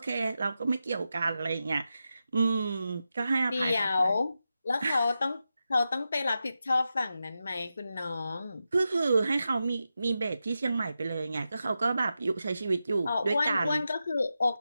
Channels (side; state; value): both; inverted; correlation -0.90